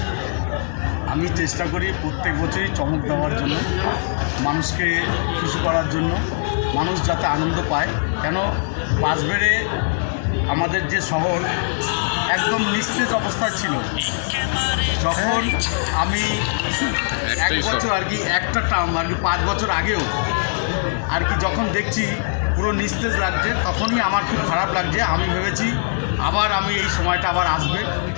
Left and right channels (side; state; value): right; silent; 55 dB below the other